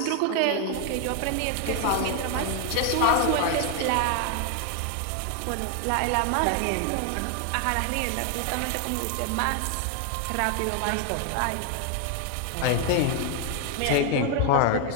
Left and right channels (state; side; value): different; both; correlation 0.00